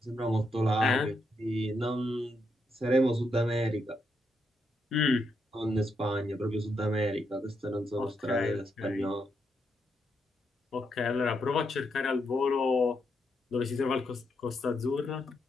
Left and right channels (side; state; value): both; normal; correlation 0.80